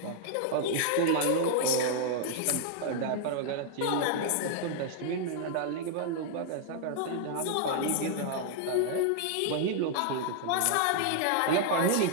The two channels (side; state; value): both; different; correlation -0.01